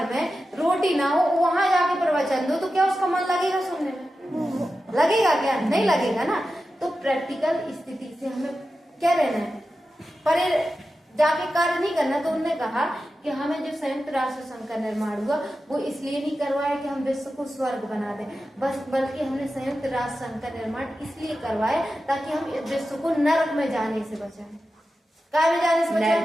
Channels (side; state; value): both; normal; correlation 0.92